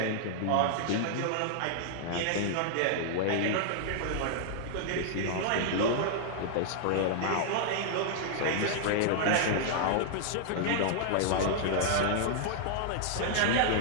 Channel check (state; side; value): different; both; correlation -0.01